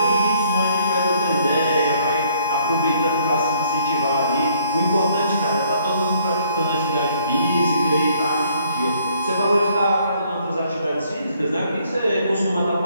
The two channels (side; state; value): both; inverted; correlation -0.65